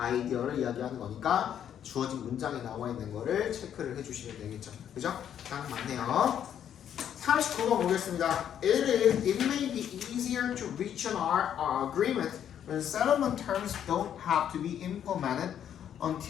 이야기하는 거니까 주어진 문장에 나와 있는 거를 체크를 해주시면 되겠죠. 그죠? 딱 맞네요. 39번 보겠습니다. It may be easier to reach an agreement when settlement terms don't have to be implemented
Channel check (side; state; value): right; quieter; 9.5 dB